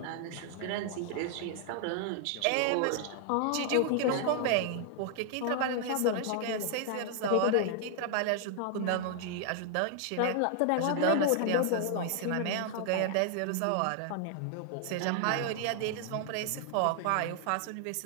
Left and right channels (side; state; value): both; different; correlation 0.00